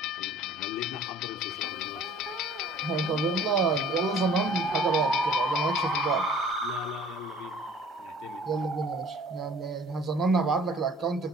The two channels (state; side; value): normal; both; correlation 0.51